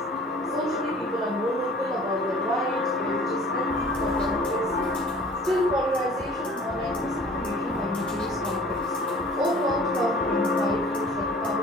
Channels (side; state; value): both; normal; correlation 0.48